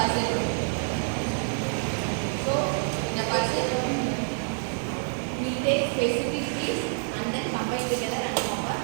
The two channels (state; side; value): silent; left; 60 dB below the other